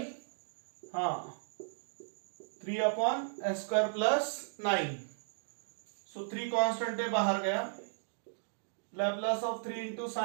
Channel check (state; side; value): silent; left; digital silence